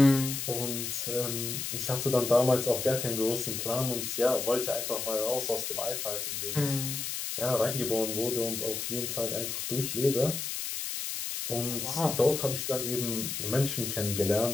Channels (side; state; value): left; noise; hiss, 4 dB below the sound